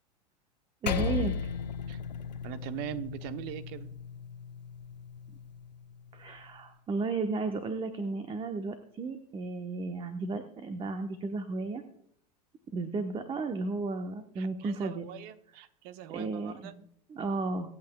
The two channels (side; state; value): both; normal; correlation 0.37